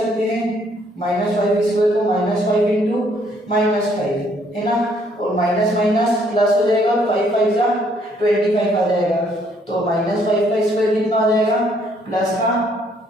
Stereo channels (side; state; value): both; normal; correlation 0.66